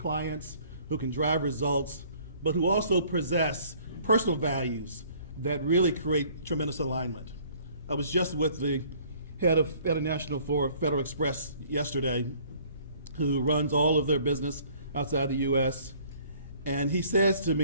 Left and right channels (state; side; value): inverted; both; correlation -0.57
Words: who can drive results, but who also possess personal values that really create tremendous alignment. I was just with the head of International for Federal Express yesterday, who runs all of their business outside the US. And he says to